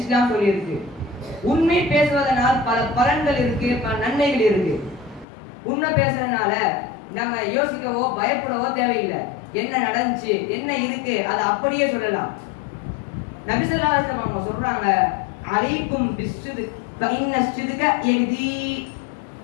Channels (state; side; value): drops out; right; at 5.2 s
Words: சொல்லியிருக்கு. உண்மை பேசுவதனால் பல பலன்கள் இருக்கு, பல நன்மைகள் இருக்கு. உண்மை பேசுறதுனால நம்ம யோசிக்கவோ பயப்படவோ தேவையில்லை. என்ன நடந்துச்சு, என்ன இருக்கு, அதை அப்படியே சொல்லலாம். நபி ஸல்லல்லாஹு அலைஹி வஸல்லம் அவங்க சொல்றாங்க, அலைக்கும் பிஸ்ஸித்க் ஃபஇன்ன ஸித்க யஹ்தி